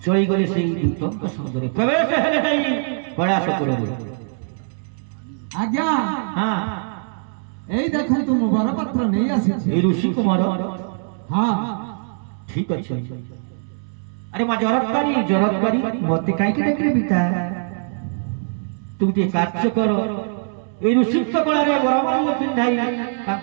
चली गले से दूतों संगरे प्रवेश हेले कई प्रयास करबो आज्ञा हां एई देखंतु मो बरपत्र नै आसी ए ऋषि कुमार हां ठीक अछि अरे मा जरत्कारी मते काई के देखले बिता तू ते कार्य कर ए ऋषि तो कळे बरमान पिंधाई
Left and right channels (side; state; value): left; silent; digital silence